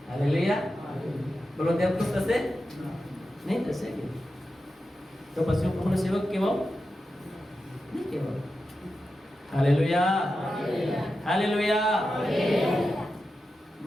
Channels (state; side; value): normal; both; correlation 0.91